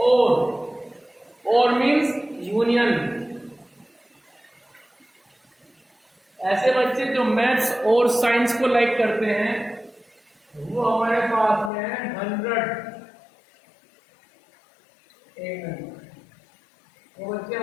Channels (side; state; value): right; drops out; at 11.7 s